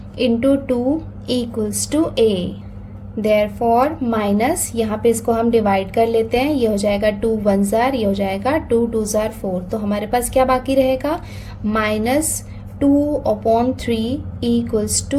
into 2 equals to a। Therefore minus यहाँ पे इसको हम डिवाइड कर लेते हैं, ये हो जाएगा 2 1 जार, ये हो जाएगा 2 2 जार 4। तो हमारे पास क्या बाकी रहेगा, -2/3 equals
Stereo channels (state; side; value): identical; both; correlation 1.00